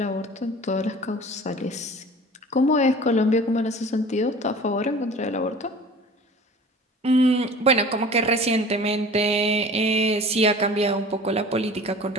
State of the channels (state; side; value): normal; both; correlation 0.43